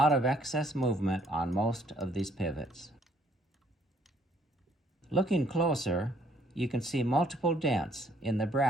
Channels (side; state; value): both; normal; correlation 0.64